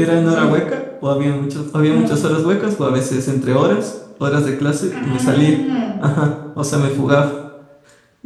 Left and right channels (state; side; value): identical; both; correlation 1.00